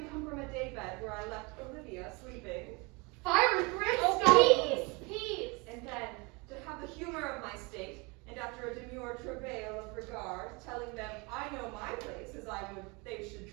come from a daybed where I left Olivia sleeping, Fire and brimstone! Oh, peace. and then to have the humor of my state, and after a demure travail of regard, telling them I know my place as I would they should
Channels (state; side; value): quieter; left; 28.4 dB